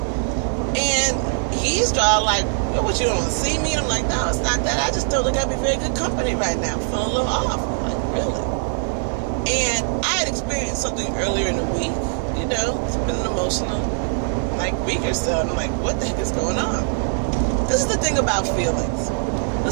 And he's all like, what, you don't want to see me? And I'm like, no, it's not that. I just don't think I'd be very good company right now. I'm feeling a little off. I'm like, really? And I had experienced something earlier in the week. It's been an emotional, week or so. And I'm like, what the heck is going on? This is the thing about feelings.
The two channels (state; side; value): silent; left; 64 dB below the other